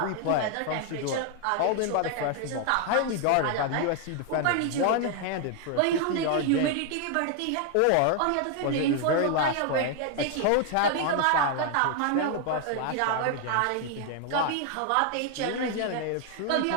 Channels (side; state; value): both; different; correlation 0.00